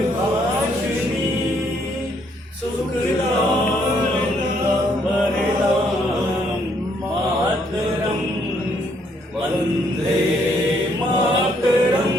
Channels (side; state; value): both; normal; correlation 0.70